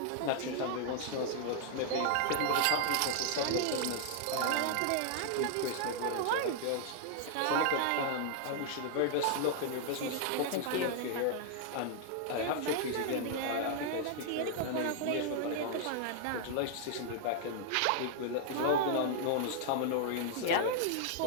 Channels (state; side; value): different; both; correlation -0.01